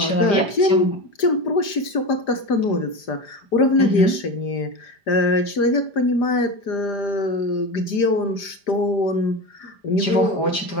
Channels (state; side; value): late; right; 5.0 ms